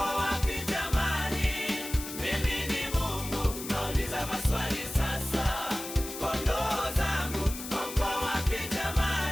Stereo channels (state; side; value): noise; left; hiss, 9 dB below the sound